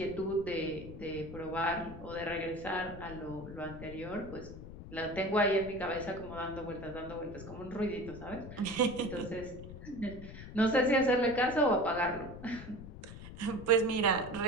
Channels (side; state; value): left; noise; rumble, 12 dB below the sound